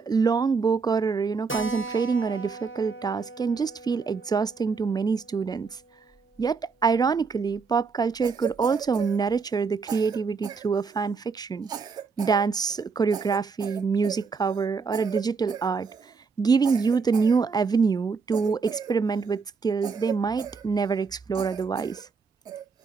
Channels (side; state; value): left; quieter; 5.0 dB